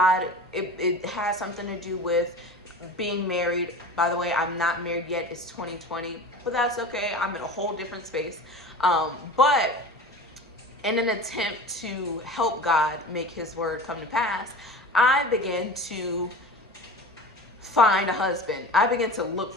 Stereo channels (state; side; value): normal; both; correlation 0.35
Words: It has something to do with being married. By the way, I'm not married yet. It's 2020, but that's okay. I'm in a whole different space. But in an attempt to help God make his word come to pass, I began to find a husband. I began to look